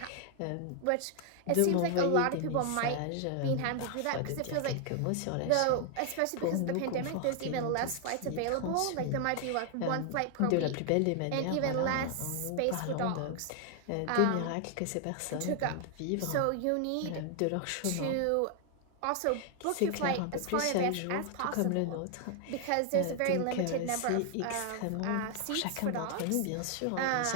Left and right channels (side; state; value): both; different; correlation 0.00